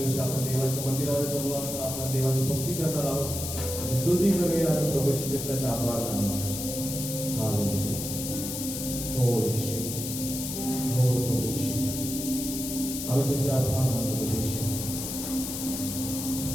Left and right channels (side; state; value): left; noise; hiss, 5 dB below the sound